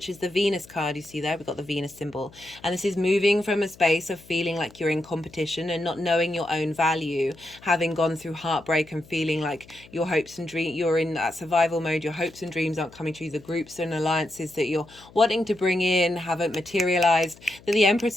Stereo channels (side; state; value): left; noise; hum, 23 dB below the sound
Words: is the Venus card. You see there, we've got the Venus symbol, and this is moving from a space of feeling like you're in competition and not knowing your own value, having gone through heartbreak and feeling like your hopes and dreams, you're in that survival mode, your hopes and dreams aren't coming true, the groups and alliances that you're wanting to bring in haven't materialized, that the